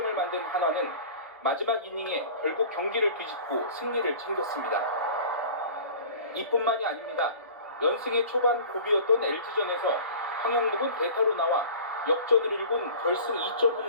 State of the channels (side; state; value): both; inverted; correlation -0.40